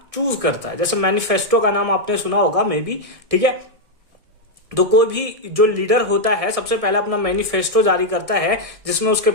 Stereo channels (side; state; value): left; late; 1.7 ms